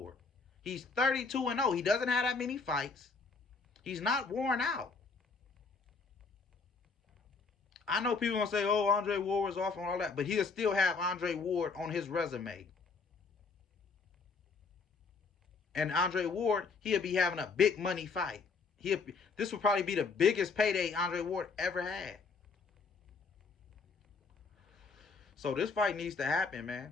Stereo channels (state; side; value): quieter; right; 4.6 dB